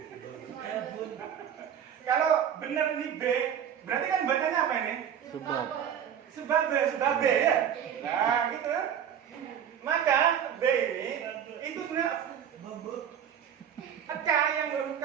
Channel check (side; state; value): left; quieter; 9.0 dB